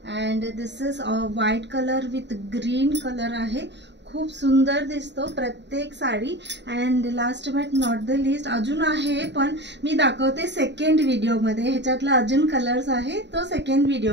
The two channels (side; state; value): left; late; 0.51 ms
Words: and this is white color with green color आहे. खूप सुंदर दिसतो प्रत्येक sari. And last but not the list अजून आहे, पण मी दाखवते सेकंड व्हिडिओमध्ये. ह्याच्यातला अजून कलर्स आहे तो सेकंड